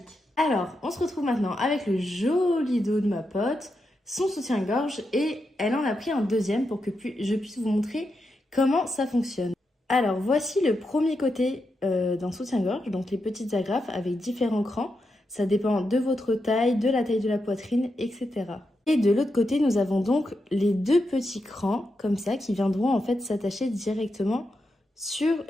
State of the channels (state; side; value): normal; both; correlation 0.86